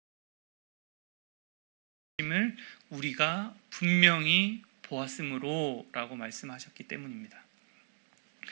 우리가 분명히 보았으므로 라고 말씀하셨기 때문입니다.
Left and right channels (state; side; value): silent; left; 53 dB below the other